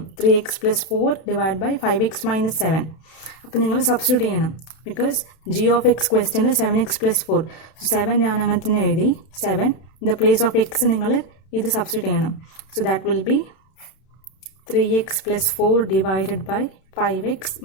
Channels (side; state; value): right; late; 31 ms